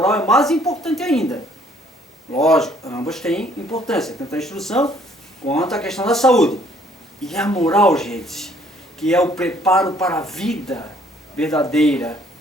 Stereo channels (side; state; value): both; normal; correlation 0.62